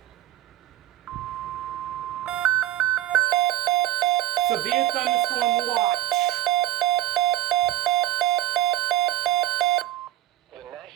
Severe thunderstorm watch. The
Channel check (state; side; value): quieter; left; 14.9 dB